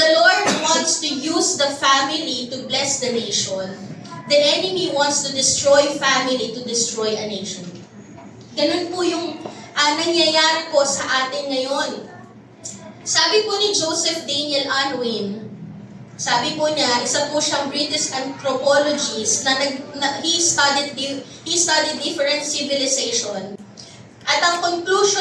Lord wants to use the family to bless the nation, the enemy wants to destroy family to destroy a nation. Ganun po yung nangyayari po sa atin ngayon. Sabi po ni Joseph Daniel Unwin, sabi po niya, isa po siyang British anthropologist na he studied different civilization. At ang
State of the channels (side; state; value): both; identical; correlation 1.00